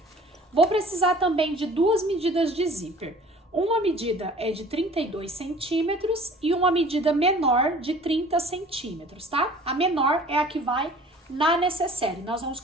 Vou precisar também de duas medidas de zíper. Uma medida é de 32 centímetros e uma medida menor de 30 centímetros, tá? A menor é a que vai na necessaire. Nós vamos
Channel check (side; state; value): both; normal; correlation 0.48